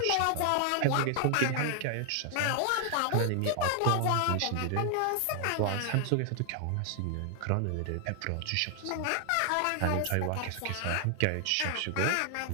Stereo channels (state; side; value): different; both; correlation 0.00